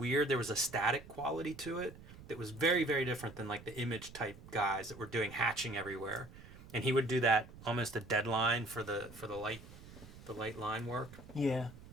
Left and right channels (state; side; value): noise; right; rumble, 17 dB below the sound